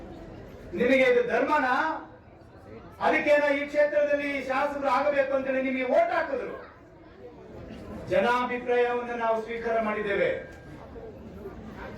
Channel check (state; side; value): identical; both; correlation 1.00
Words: ನಿಮಗೆ ಇದು ಧರ್ಮನಾ? ಅದಕ್ಕೇನ ಈ ಕ್ಷೇತ್ರದಲ್ಲಿ ಶಾಸಕರು ಆಗಬೇಕು ಅಂತೇಳಿ ನಿಮಗೆ ವೋಟ್ ಹಾಕಿದ್ರು. ಜನಾಭಿಪ್ರಾಯವನ್ನು ನಾವು ಸ್ವೀಕಾರ ಮಾಡಿದ್ದೇವೆ.